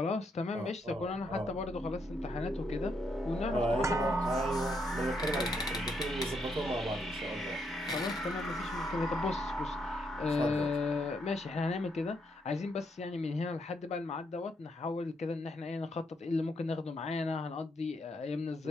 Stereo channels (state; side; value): normal; both; correlation 0.77